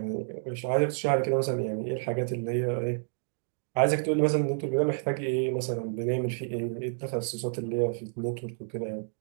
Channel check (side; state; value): left; silent; digital silence